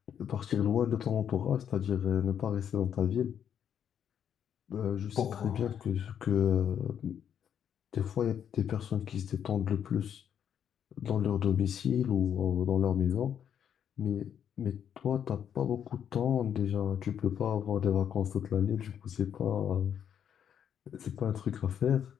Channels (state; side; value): quieter; right; 8.7 dB